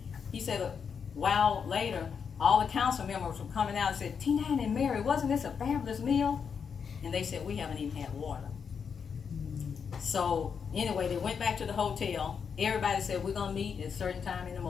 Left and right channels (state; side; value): quieter; right; 6.5 dB